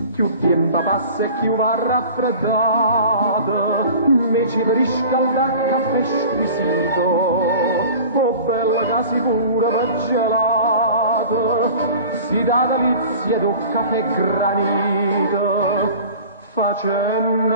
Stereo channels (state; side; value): inverted; both; correlation -0.41